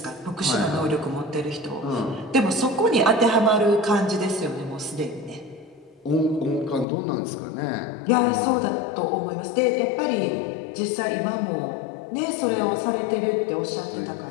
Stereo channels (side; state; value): right; drops out; at 6.9 s